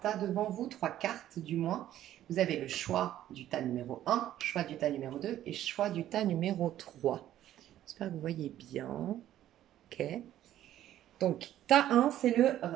tas devant vous, 3 cartes du moins. Vous avez le choix du tas numéro 1, choix du tas numéro 2 et choix du tas numéro 3. J'espère que vous voyez bien. Ok. Donc, tas 1, c'est le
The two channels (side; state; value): left; quieter; 12.5 dB